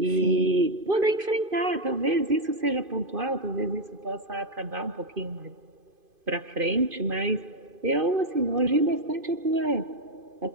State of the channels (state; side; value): late; left; 2.5 ms